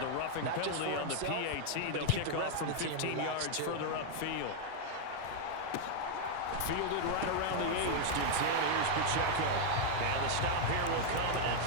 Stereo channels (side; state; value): both; different; correlation 0.00